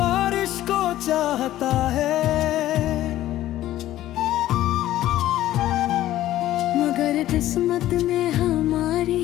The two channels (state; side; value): quieter; right; 14.0 dB